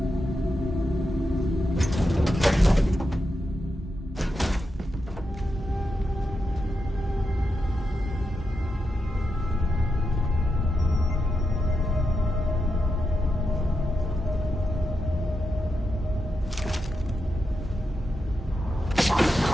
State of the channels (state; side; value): normal; both; correlation 0.86